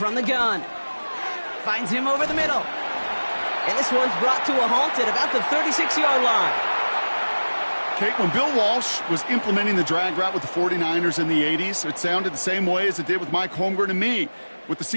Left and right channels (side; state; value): both; inverted; correlation -1.00